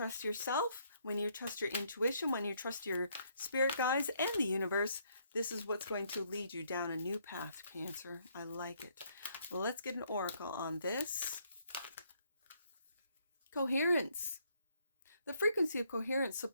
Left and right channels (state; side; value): inverted; both; correlation -0.70